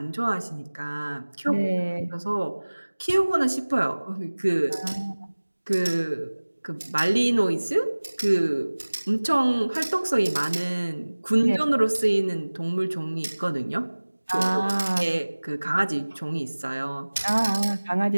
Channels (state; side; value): inverted; both; correlation -1.00